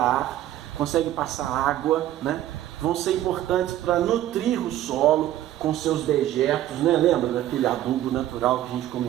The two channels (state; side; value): quieter; left; 13.1 dB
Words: ar, consegue passar água, né? Vão ser importantes para nutrir o solo com seus dejetos, né? Lembra daquele adubo natural que a gente